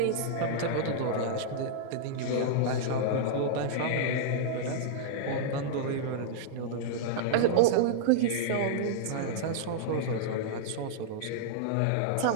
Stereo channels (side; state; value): both; different; correlation -0.02